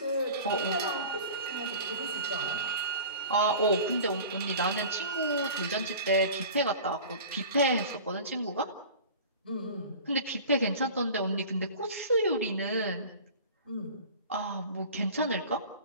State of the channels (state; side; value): inverted; both; correlation -0.39